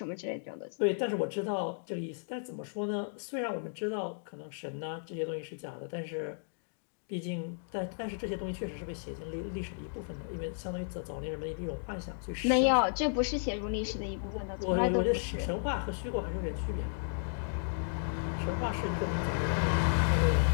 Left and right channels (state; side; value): silent; right; digital silence